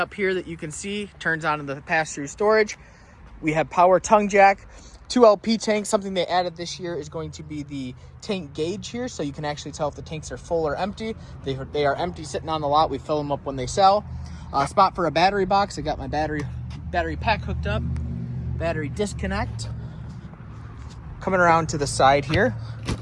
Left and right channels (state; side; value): identical; both; correlation 1.00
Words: here that you can see. Turns on in the pass-through storage. We have power tongue jack, 2 LP tanks. Something they added this year is going to be the tank gauge here, so you can actually tell if the tanks are full or empty. They are empty sitting on the lot. We fill them up when they sell. Spot for a battery box. I got my battery pack hooked up. Battery disconnect. Coming around to the side here,